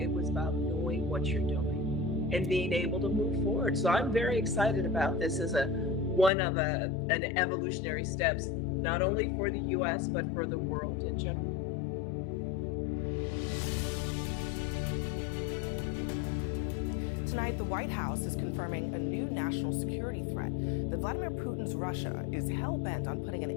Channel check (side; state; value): right; drops out; at 6.3 s